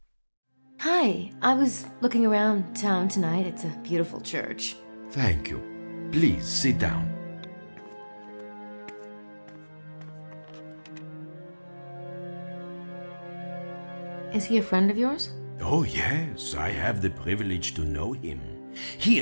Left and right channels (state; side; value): inverted; both; correlation -1.00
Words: Hi, I was looking around town tonight. It's a beautiful church. Thank you. Please sit down. Is he a friend of yours? Oh, yes, I have the privilege to know him. He